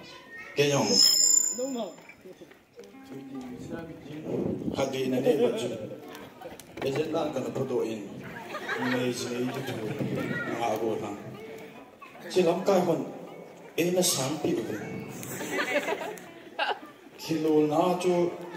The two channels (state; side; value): identical; both; correlation 1.00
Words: kenyang. Hagi nanti baju. Ejen nak kena fotoin. Ini itu tu ngago nang. Silam kai kon ena sampi tu. Kilo na tu